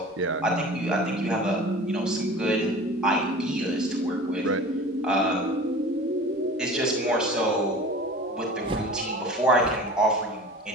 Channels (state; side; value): normal; both; correlation 0.40